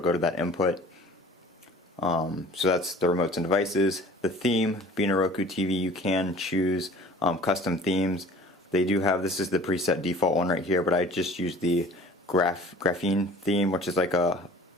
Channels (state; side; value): normal; both; correlation 0.46